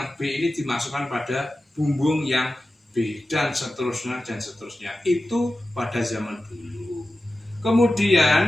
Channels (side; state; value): both; normal; correlation 0.94